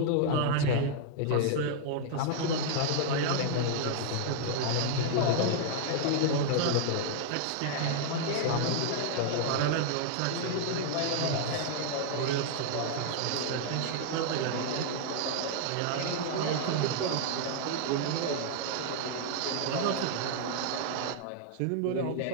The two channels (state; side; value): different; both; correlation 0.00